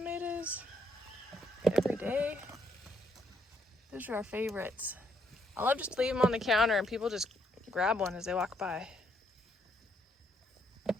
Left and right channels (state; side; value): normal; both; correlation 0.73